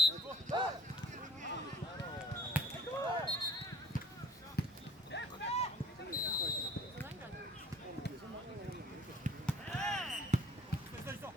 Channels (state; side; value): normal; both; correlation 0.52